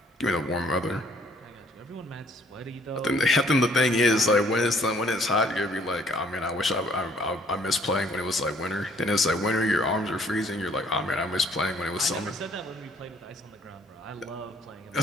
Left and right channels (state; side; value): normal; both; correlation 0.62